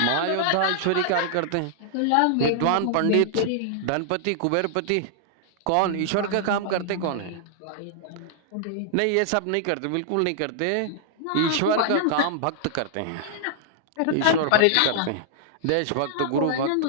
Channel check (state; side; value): different; both; correlation -0.01